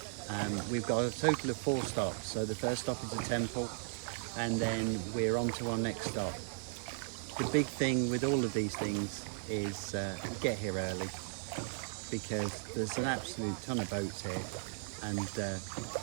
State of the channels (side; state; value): left; silent; 54 dB below the other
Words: We've got a total of 4 stops. So the first stop is a temple and then we're on to our next stop. The big thing with all of these things is get here early because there's an absolute ton of boats here. And